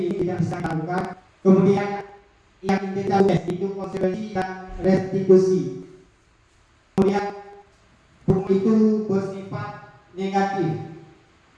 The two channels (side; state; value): both; identical; correlation 1.00